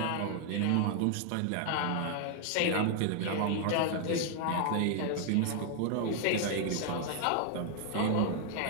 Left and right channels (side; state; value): both; different; correlation 0.00